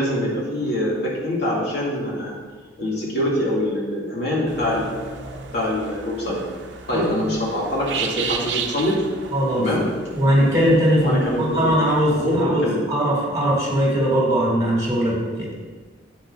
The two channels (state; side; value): normal; both; correlation 0.51